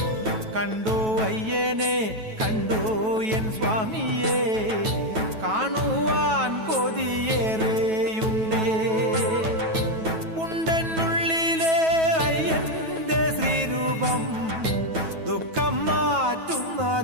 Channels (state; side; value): late; left; 9.2 ms